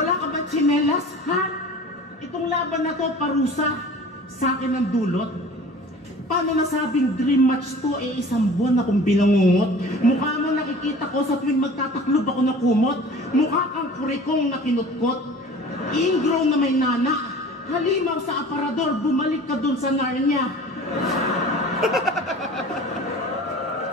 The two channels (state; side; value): normal; both; correlation 0.43